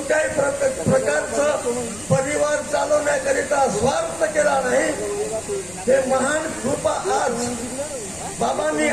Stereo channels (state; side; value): noise; left; rumble, 21 dB below the sound